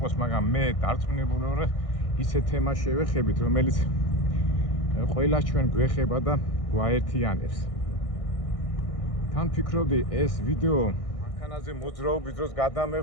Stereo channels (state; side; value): late; right; 1.6 ms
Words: მაგრამ მე დარწმუნებული ვარ ისეთ თემას შევეხებით, რომელიც ყველა ჩვენ გვეხება და გვაერთიანებს. თან ფიქრობდი ეს ვიდეო მანქანაზე მოძრაობის დროს